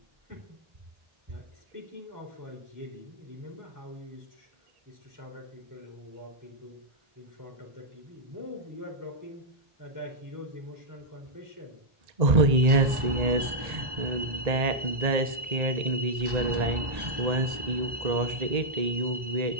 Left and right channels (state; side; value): late; left; 1.8 ms